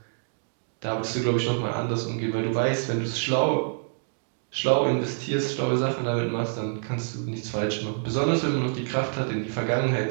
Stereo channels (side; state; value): left; silent; 60 dB below the other